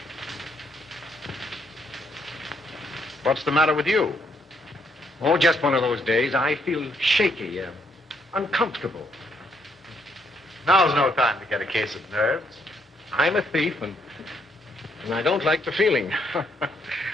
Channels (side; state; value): both; normal; correlation 0.72